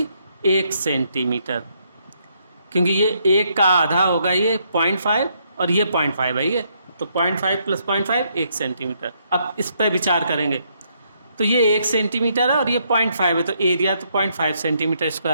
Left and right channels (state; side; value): inverted; both; correlation -0.73